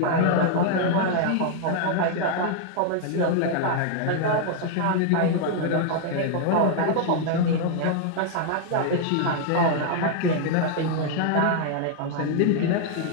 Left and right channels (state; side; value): different; both; correlation 0.00